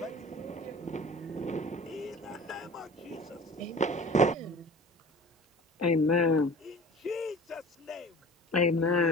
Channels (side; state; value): both; normal; correlation 0.42